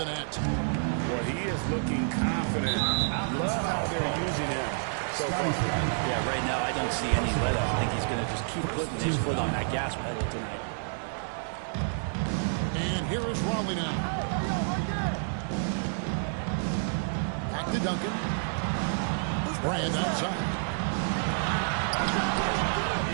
net. Well, he is looking confident. I love how they're using him so far. Yeah, right now I don't see any let up. I think he's going to just keep putting his foot on that gas pedal tonight. And here is Raleigh now. Back to Duncan. Brand outside.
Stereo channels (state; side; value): silent; left; digital silence